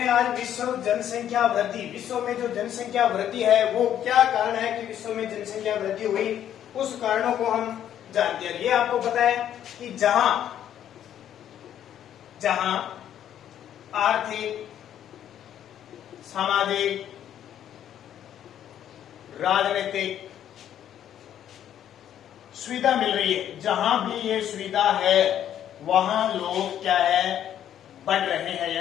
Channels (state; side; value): quieter; right; 10.5 dB